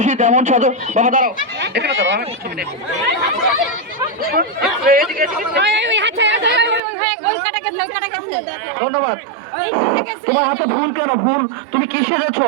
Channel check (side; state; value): left; drops out; at 6.8 s